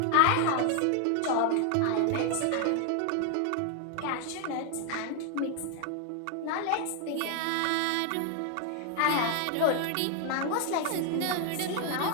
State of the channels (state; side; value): different; both; correlation 0.00